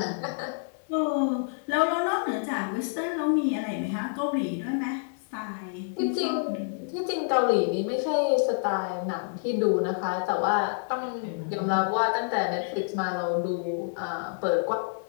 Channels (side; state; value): right; silent; 59 dB below the other